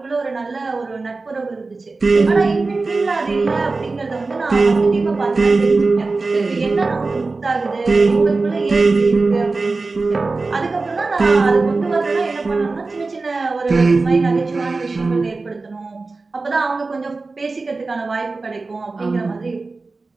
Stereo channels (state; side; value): quieter; left; 3.7 dB